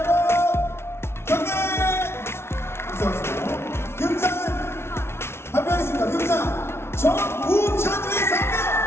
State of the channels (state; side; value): late; right; 0.12 ms